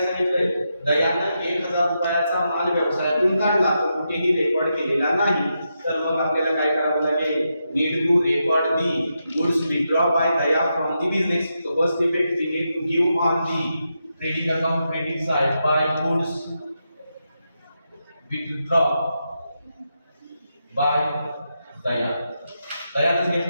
सांगितलंय, दयानं 1000 रुपयाचा माल व्यवसायातून काढला, तो कुठेही रेकॉर्ड केलेला नाही. तर मग आपल्याला काय करावं लागेल, need to record the goods withdraw by Daya from the business. So first effect we need to give on the trading account credit side by goods withdraw by Daya. दयाने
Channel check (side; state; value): both; inverted; correlation -0.85